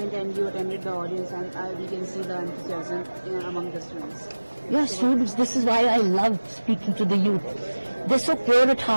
And you attended the audience, and we can see the enthusiasm among the students. Yeah, students, this is why I love speaking to the youth. They're so pure at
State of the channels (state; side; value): inverted; both; correlation -1.00